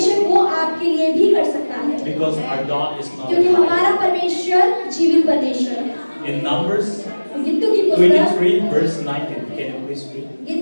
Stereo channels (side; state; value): both; inverted; correlation -1.00